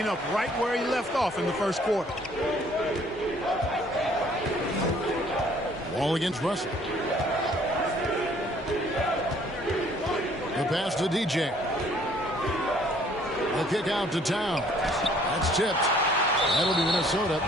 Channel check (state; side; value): normal; both; correlation 0.59